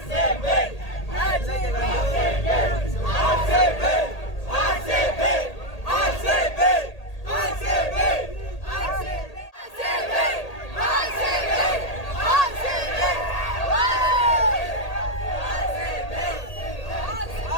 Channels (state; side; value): late; right; 1.8 ms